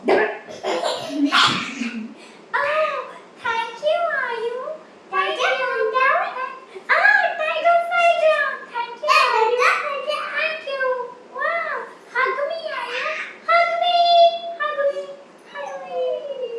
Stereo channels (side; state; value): both; identical; correlation 1.00